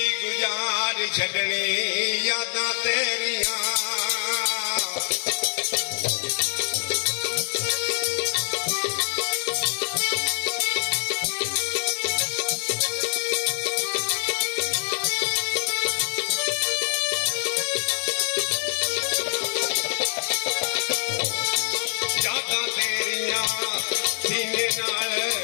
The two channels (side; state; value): right; silent; digital silence